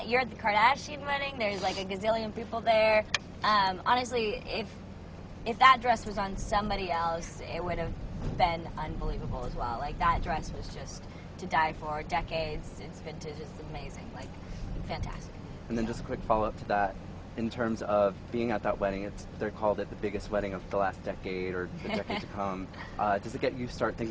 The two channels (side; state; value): both; identical; correlation 1.00